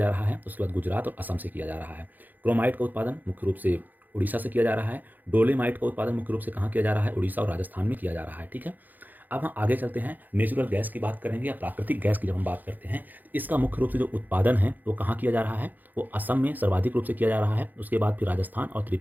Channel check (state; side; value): late; left; 0.085 ms